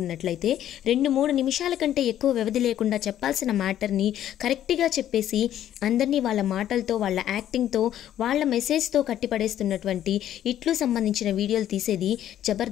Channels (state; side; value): quieter; right; 11.4 dB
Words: 2-3 నిమిషాల కంటే ఎక్కువ వ్యవధి లేకుండా చెప్పాల్సిన మ్యాటర్ని కరెక్ట్గా చెప్పేసి అందరినీ వాళ్ళ మాటలతో, వాళ్ళ యాక్టింగ్తో, వాళ్ళ మెసేజ్తో కట్టిపడేస్తున్నటువంటి ఇట్లు సంబంధించిన వీడియోలు తీసేది